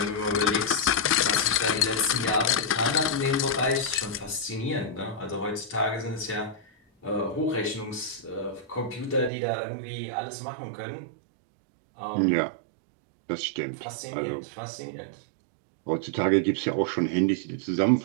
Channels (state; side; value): drops out; left; at 9.3 s